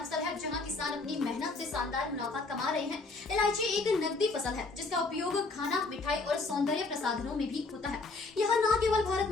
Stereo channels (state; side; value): quieter; right; 3.6 dB